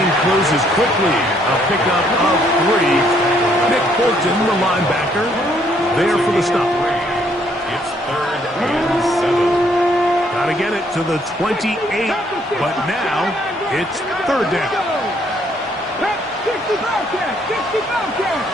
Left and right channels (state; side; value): normal; both; correlation 0.68